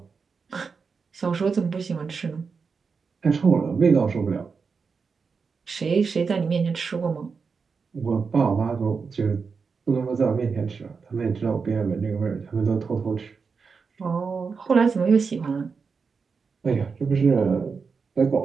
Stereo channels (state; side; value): quieter; left; 5.2 dB